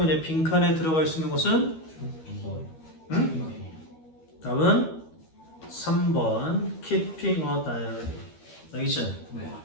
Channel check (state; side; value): late; right; 13 ms